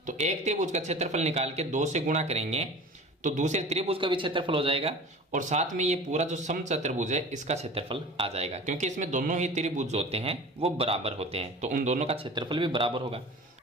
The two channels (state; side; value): normal; both; correlation 0.38